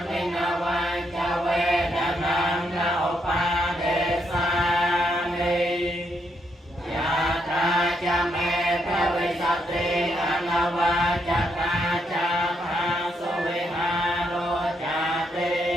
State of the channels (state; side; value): normal; both; correlation 0.77